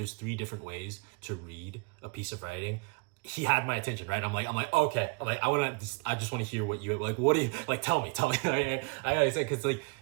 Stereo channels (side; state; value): left; quieter; 31.9 dB